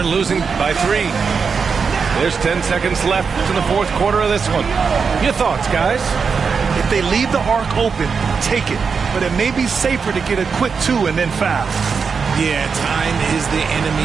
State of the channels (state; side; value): quieter; left; 5.6 dB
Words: losing by 3. There's 10 seconds left in the fourth quarter of this one. Your thoughts, guys? If they leave the arc open, take it. But it may be safer to get a quick 2 and then foul. Yeah, time is the